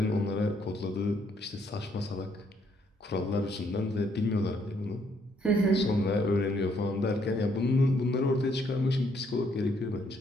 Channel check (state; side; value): normal; both; correlation 0.70